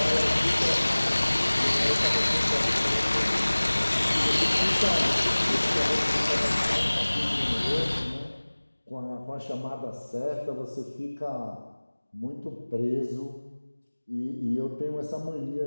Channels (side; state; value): both; inverted; correlation -1.00